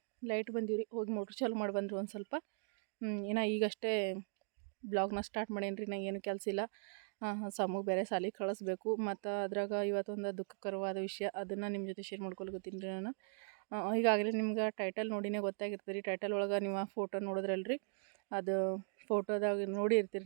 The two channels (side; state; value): left; silent; 52 dB below the other